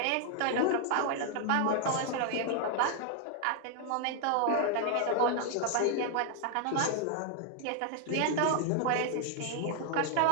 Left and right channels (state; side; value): different; both; correlation 0.00